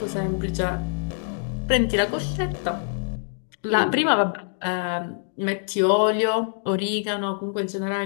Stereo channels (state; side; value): silent; right; digital silence